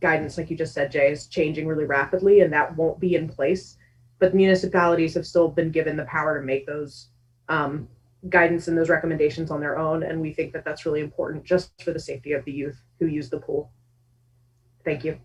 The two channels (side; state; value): both; identical; correlation 1.00